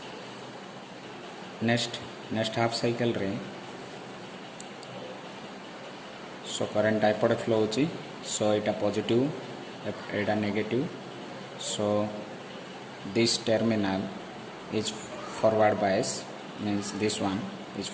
नेक्स्ट हाफ साइकिल रे सो करंट एपटे फ्लो होची। सो यहाँ पॉजिटिव यहाँ negative. So this terminal is forward bias, means this one is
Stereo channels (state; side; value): identical; both; correlation 1.00